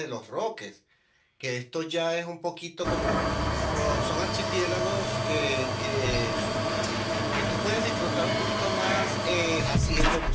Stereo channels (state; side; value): identical; both; correlation 1.00